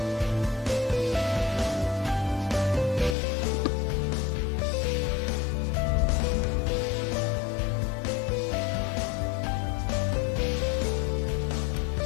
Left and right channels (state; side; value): drops out; right; at 3.2 s